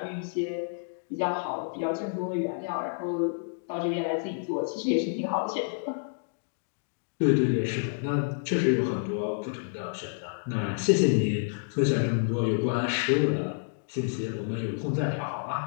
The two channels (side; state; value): right; silent; digital silence